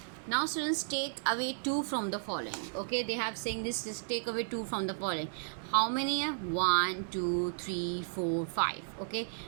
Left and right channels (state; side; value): silent; left; digital silence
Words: Now students, take away 2 from the following. Okay, they have saying this, just take away 2 from the following. How many? 1, 2, 3, 4, 5. Okay,